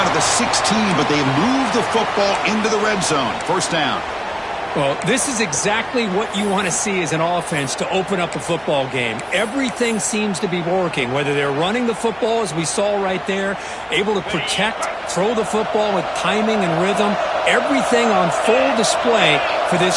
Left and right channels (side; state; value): both; identical; correlation 1.00